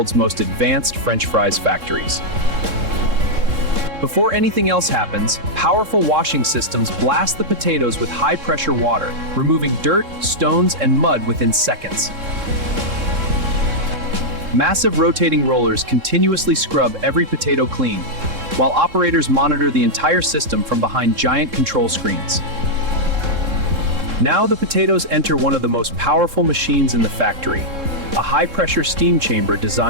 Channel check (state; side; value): late; left; 3.7 ms